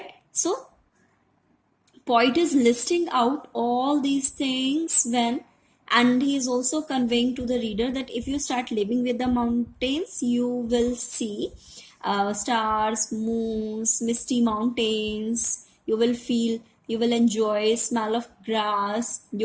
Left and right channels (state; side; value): identical; both; correlation 1.00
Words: So, poet is listing out all these things and he is also conveying to the reader that if you start living with the mountains, you will see stars, moons, misty mountains. You will enjoy smell of grass.